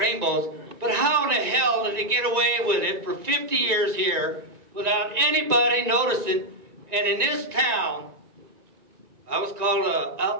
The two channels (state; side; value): late; left; 1.9 ms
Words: but how in the hell did they get away with it for 50 years here without anybody noticing? And in this town, I was called an